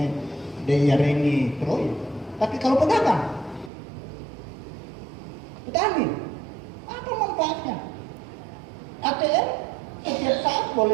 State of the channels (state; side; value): drops out; left; at 3.7 s